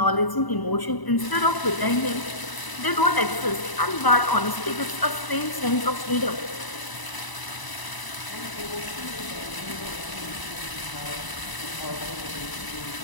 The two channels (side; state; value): right; late; 1.0 ms